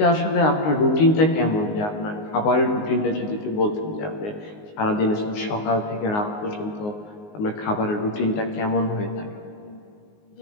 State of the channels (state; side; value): late; right; 19 ms